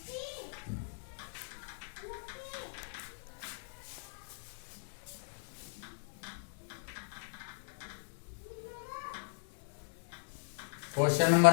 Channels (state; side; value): silent; right; digital silence